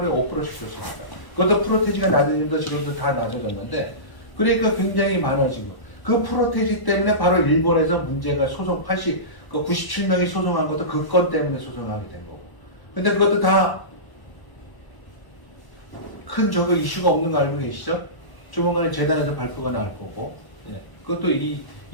5%씩 줬습니다. 그것도 프로테지가 낮아지면서 지금도 다 낮아졌는데, 그러니까 굉장히 많아지고, 그 프로테지 때문에 바로 일본에서 문제가 소송 97명이 소송한 것도 그 건 때문에 소송하게 된 거고. 근데 그것도 다 큰 저거 이슈가 없는 거 알고 계시죠? 조만간에 재단에서 발표가 나올 거고, 예. 그것도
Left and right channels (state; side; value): late; right; 1.0 ms